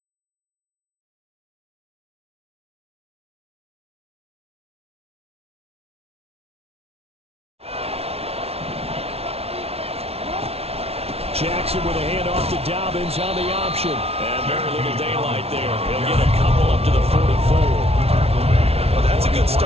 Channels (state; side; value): late; left; 0.30 ms